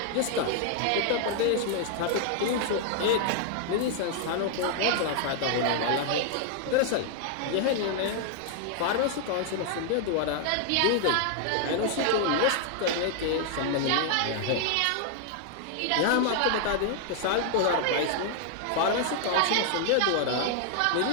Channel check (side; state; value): both; different; correlation 0.00